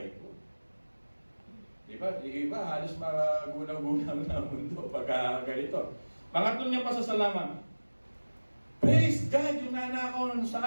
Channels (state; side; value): inverted; both; correlation -1.00